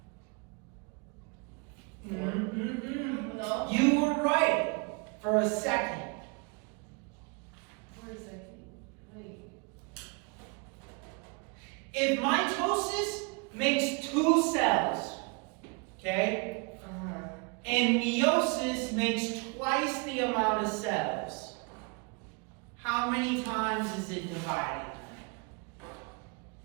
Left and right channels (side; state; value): left; quieter; 32.0 dB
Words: No. You were right for a second. For a second. Wait. If mitosis makes 2 cells, okay, and meiosis makes twice the amount of cells, how many times is it divided?